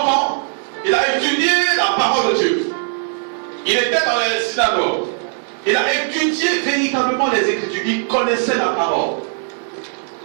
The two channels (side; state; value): left; silent; 67 dB below the other